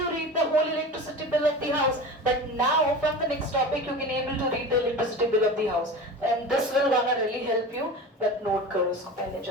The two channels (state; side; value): normal; both; correlation 0.32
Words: read the whole electricity bill of the house? But now from the next topic you can able to read the electricity bill of the house, and this will gonna really help you. But note करो इसको पहले